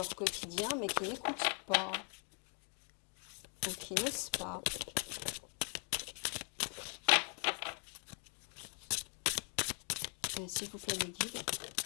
quotidien, mais qui n'écoutent pas ou qui n'osent pas. S'il vous plaît, les guides,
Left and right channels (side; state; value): right; quieter; 37.4 dB